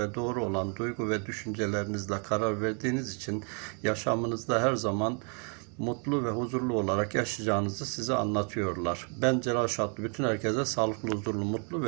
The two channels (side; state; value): left; quieter; 38.0 dB